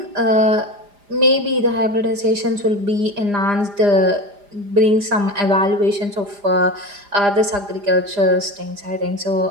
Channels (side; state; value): left; late; 4.9 ms